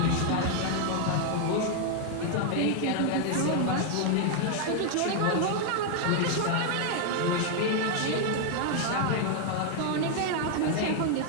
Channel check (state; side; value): different; both; correlation 0.00